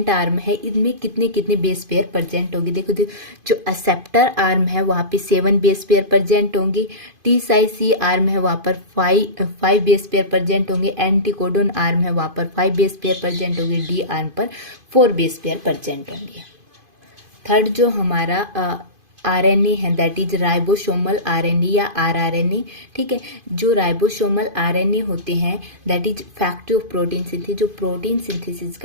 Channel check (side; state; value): left; late; 2.5 ms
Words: आर्म है, इनमें कितने कितने बेस पेयर प्रेजेंट होंगे। देखो जो एक्सेप्टर आर्म है वहाँ पे 7 बेस पेयर प्रेजेंट होंगे, TSI-C आर्म है वहाँ पर 5 बेस पेयर प्रेजेंट होंगे, एंटीकोडोन आर्म है वहाँ पर 5 बेस पेयर प्रेजेंट होंगे, डी आर्म पर 4 बेस पेयर प्रेजेंट होंगे। थर्ड जो हमारा RNA है दैट इज राइबोसोमल RNA या rRNA। ठीक है, जो राइबोसोमल RNA होते हैं that is factory of protein synthesis. जो प्रोटीन सिंथेसिस